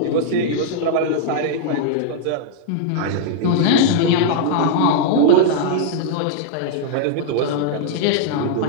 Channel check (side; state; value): both; different; correlation -0.01